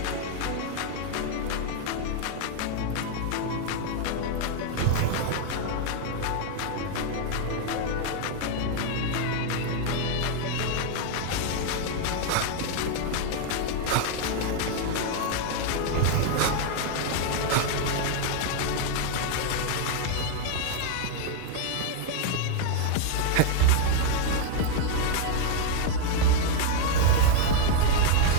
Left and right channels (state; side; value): different; both; correlation 0.00